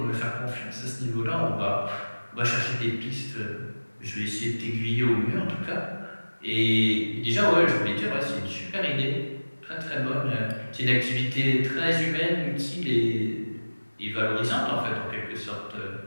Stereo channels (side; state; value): both; inverted; correlation -1.00